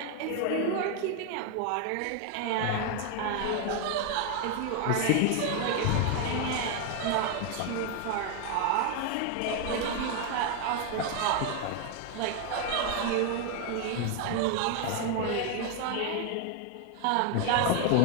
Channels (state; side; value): different; both; correlation 0.01